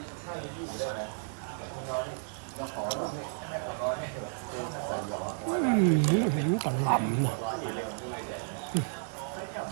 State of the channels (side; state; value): left; silent; digital silence